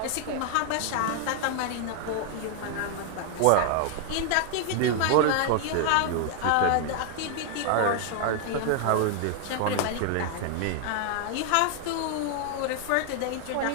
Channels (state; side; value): different; both; correlation 0.00